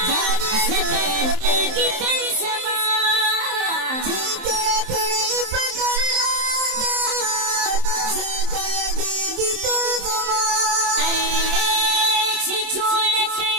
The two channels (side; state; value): left; late; 27 ms